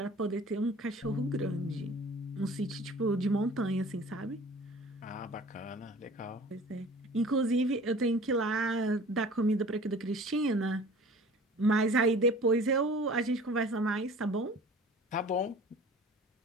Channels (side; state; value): both; normal; correlation 0.46